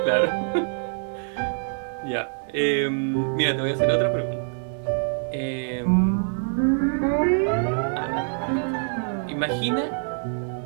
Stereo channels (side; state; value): left; silent; digital silence